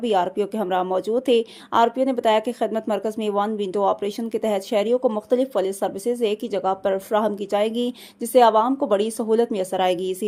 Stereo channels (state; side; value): identical; both; correlation 1.00